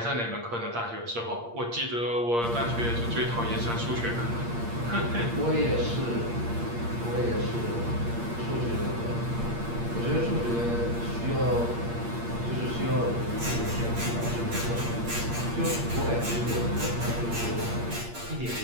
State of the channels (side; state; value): left; late; 8.6 ms